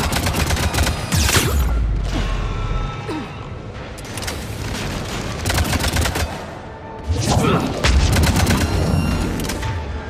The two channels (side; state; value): both; identical; correlation 1.00